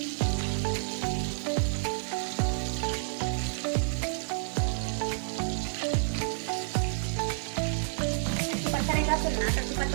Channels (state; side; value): silent; left; digital silence